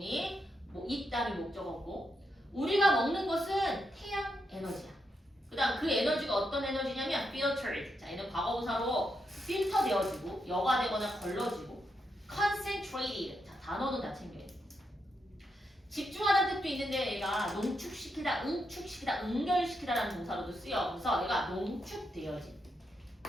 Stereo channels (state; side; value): normal; both; correlation 0.82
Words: 뭐, 있다는 목적어고. 우리가 먹는 것은 태양 에너지야. 그 다음 그 에너지가 어떤 에너지냐면, filtered. 자, 얘는 과거분사로 필터 되어지고, 여과되거나 걸러지고, concentrated. 자, 단어는 다 챙겨야 돼. 집중하다는 뜻도 있는데 얘가 농축시키다, 응축시키다, 응결시키다라는 동사로도 쓰여. 그래서 얘가 농축되어진.